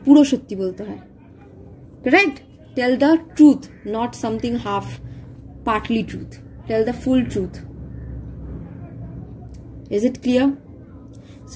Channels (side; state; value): both; identical; correlation 1.00